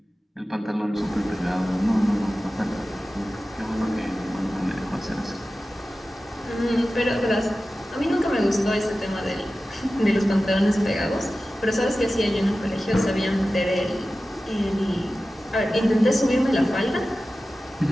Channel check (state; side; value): normal; both; correlation 0.95